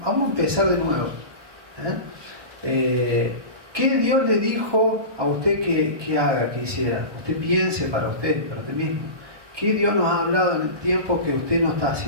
a empezar de nuevo. ¿Qué Dios le dijo a usted que haga, que hiciera? Usted piense para usted mismo. ¿Qué Dios nos ha hablado en el tiempo que usted no está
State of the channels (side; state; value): left; late; 1.2 ms